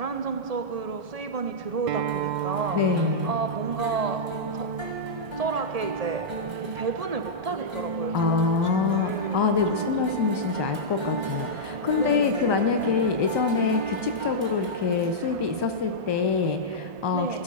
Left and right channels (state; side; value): late; left; 1.2 ms